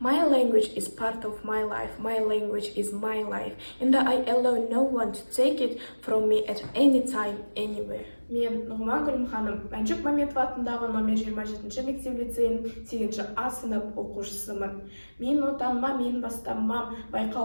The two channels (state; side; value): inverted; both; correlation -1.00